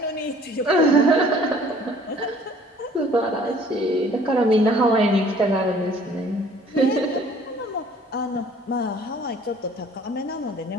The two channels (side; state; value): both; normal; correlation 0.54